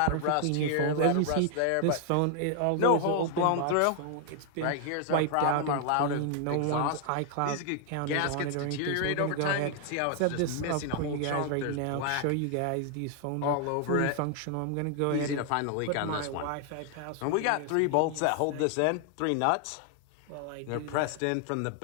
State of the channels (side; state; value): both; different; correlation 0.00